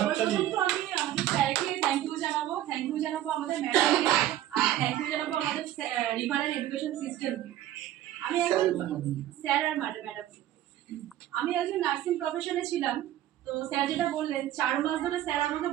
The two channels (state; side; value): quieter; left; 12.9 dB